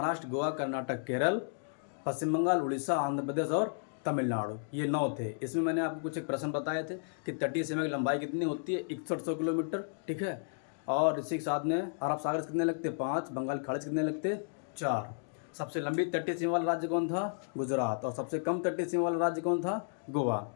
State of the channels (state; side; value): silent; right; digital silence